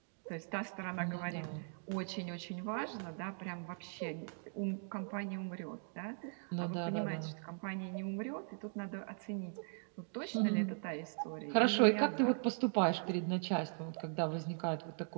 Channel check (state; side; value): silent; left; 51 dB below the other